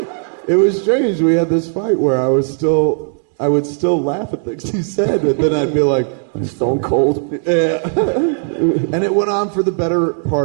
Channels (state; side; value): silent; left; digital silence